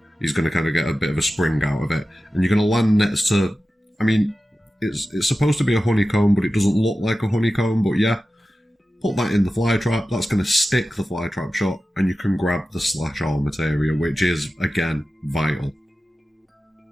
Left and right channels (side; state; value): both; normal; correlation 0.94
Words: He's going to kind of get a bit of a spring out of it. And you're going to land next to, I mean, it's supposed to be a honeycomb, but it doesn't look like a honeycomb, but yeah. Put that in the fly trap, that's going to stick the fly trap shut, and you can grab the slash-all materia, which is, again, vital.